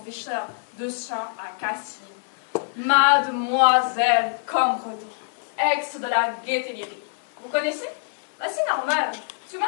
de chant à Cassis. Mademoiselle Cambredon, ex de la Gaîté Lyrique. Vous connaissez? Bah, c'est normal. Parce que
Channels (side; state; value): right; silent; digital silence